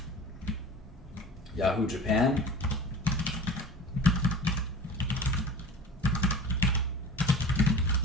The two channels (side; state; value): both; normal; correlation 0.39